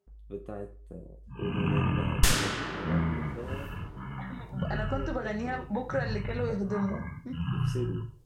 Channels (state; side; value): identical; both; correlation 1.00